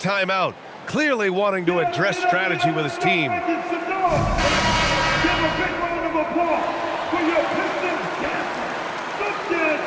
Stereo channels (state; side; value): identical; both; correlation 1.00